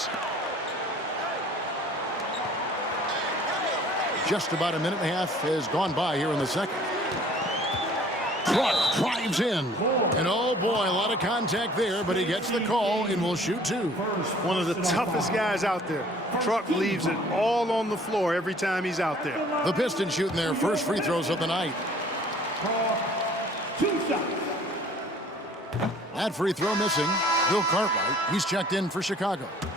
Just about a minute and a half has gone by here in the second. Truck drives in. And oh boy, a lot of contact there, but he gets the call and will shoot 2. One of the toughest guys out there. Truck leaves it all on the floor every time he's out there. The Pistons shooting their first free throws of the night. That free throw missing. Bill Cartwright, he's checked in for Chicago.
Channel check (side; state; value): both; normal; correlation 0.53